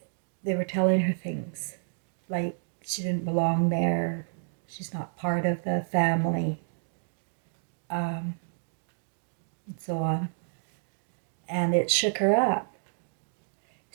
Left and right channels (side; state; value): left; silent; digital silence